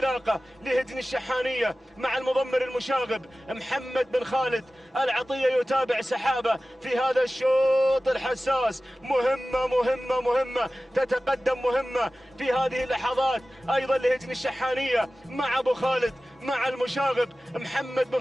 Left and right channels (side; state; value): both; normal; correlation 0.96